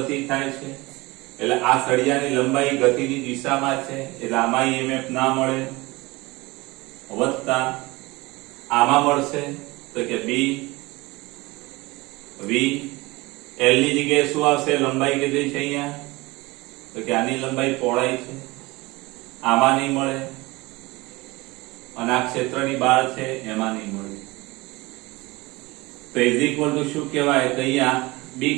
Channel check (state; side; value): quieter; left; 22.4 dB